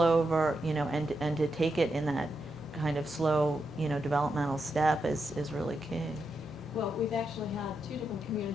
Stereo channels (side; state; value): both; normal; correlation 0.84